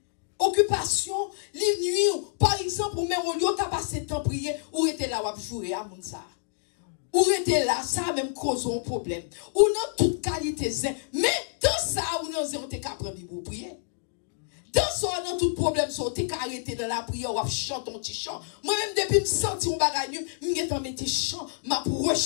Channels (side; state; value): right; silent; digital silence